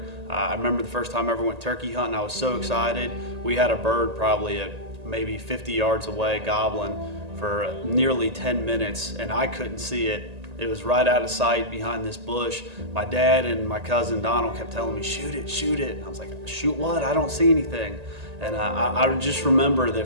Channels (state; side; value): late; left; 1.8 ms